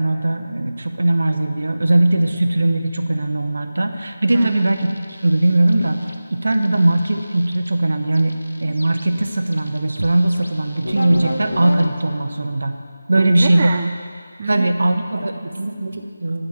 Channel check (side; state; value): both; inverted; correlation -0.98